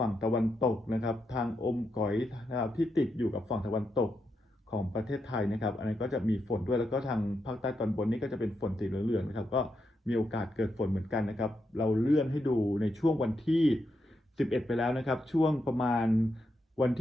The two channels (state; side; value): normal; both; correlation 0.83